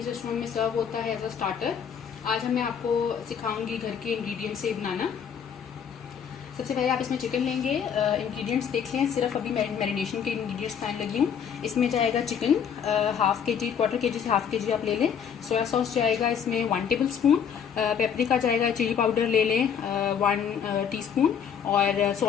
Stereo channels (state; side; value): quieter; right; 7.7 dB